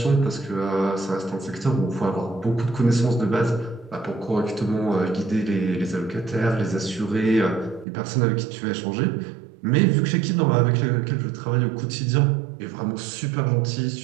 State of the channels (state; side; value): drops out; left; at 7.9 s